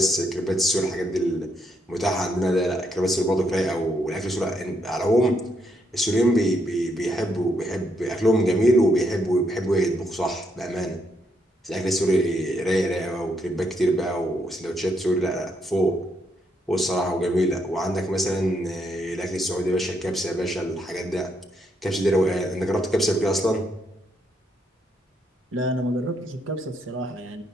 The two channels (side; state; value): both; normal; correlation 0.76